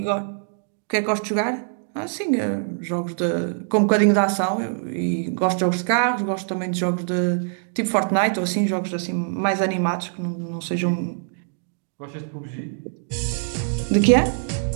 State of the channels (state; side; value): silent; left; digital silence